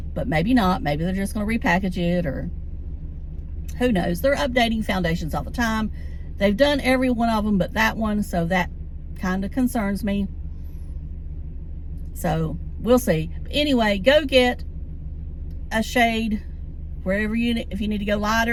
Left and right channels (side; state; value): both; identical; correlation 1.00